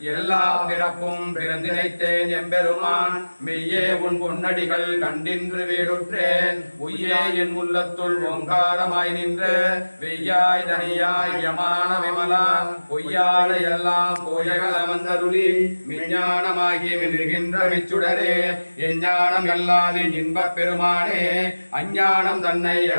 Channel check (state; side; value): inverted; both; correlation -1.00